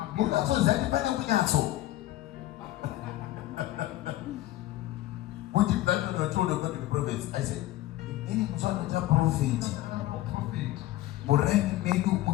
knows what that depending on Yasso? What did that told about the prophets? I said, any one of the prophet. Moreni menu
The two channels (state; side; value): quieter; right; 15.6 dB